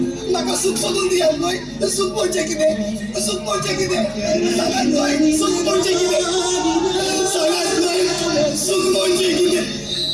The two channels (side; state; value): both; identical; correlation 1.00